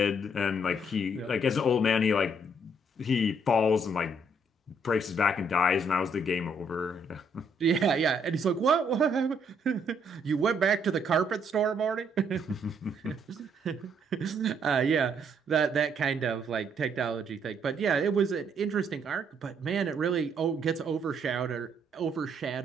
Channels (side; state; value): both; normal; correlation 0.70